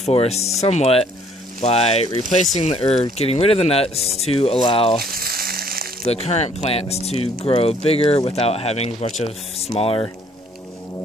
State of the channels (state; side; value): normal; both; correlation 0.61